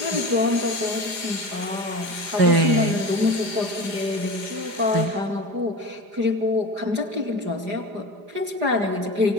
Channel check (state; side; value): late; left; 4.9 ms